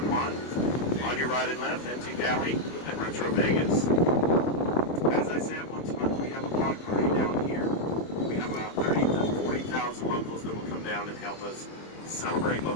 Juan. On your right and left, Antique Alley and Retro Vegas. As I said, once a month we have a block party down here. We have about 30 to 40,000 locals that will come down and help us celebrate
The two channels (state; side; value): late; right; 24 ms